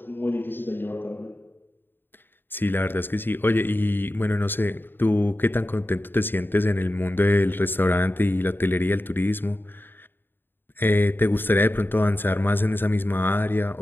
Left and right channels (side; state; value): right; late; 0.097 ms